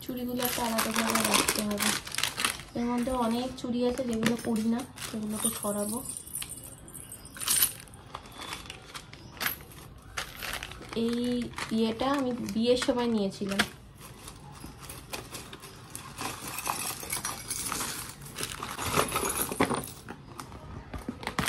চুড়িগুলো একটা আলাদাভাবে রাখতে হবে। এর মধ্যে অনেক চুড়ি আছে যেগুলো পরি না, সেগুলোকে সরাবো। এই ইয়েটা আমি বিয়ের সময় নিয়েছিলাম।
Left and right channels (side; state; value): both; identical; correlation 1.00